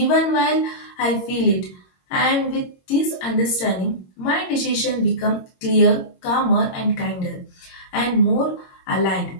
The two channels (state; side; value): late; right; 22 ms